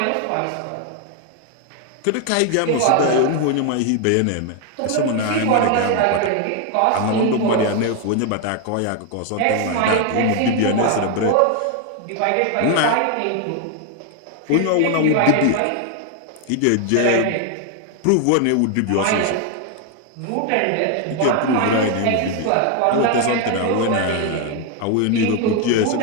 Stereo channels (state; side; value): different; both; correlation 0.01